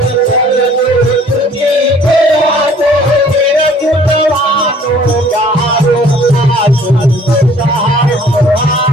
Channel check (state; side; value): normal; both; correlation 0.55